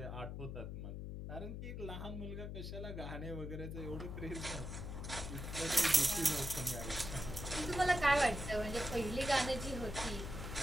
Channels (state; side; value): noise; left; hum, 6 dB below the sound